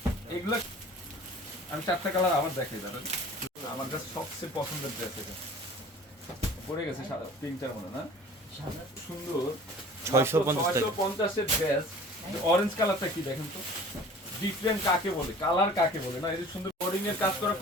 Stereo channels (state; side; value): normal; both; correlation 0.46